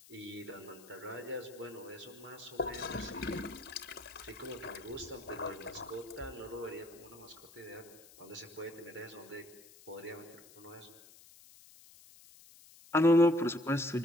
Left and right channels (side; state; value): left; noise; hiss, 21 dB below the sound